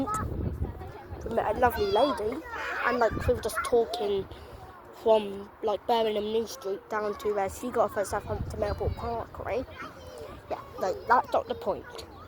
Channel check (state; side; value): identical; both; correlation 1.00